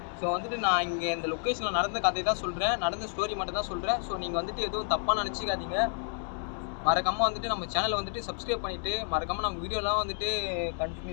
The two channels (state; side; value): silent; right; 58 dB below the other